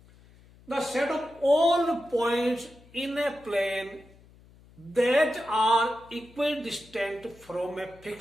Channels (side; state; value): left; noise; hum, 25 dB below the sound